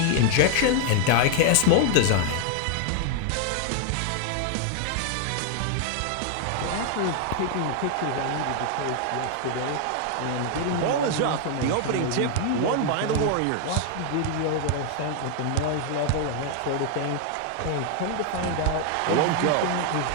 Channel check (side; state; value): both; different; correlation 0.00